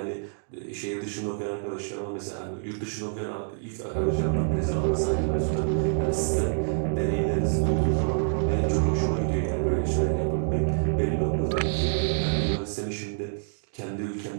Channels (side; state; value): left; silent; digital silence